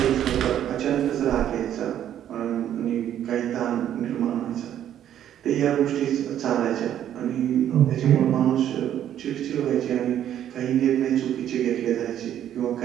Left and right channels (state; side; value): quieter; left; 10.7 dB